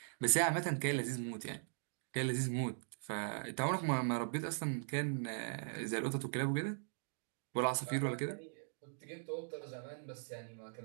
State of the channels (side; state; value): left; silent; digital silence